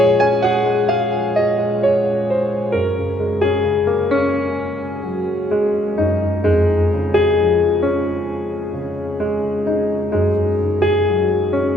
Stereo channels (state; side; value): normal; both; correlation 0.71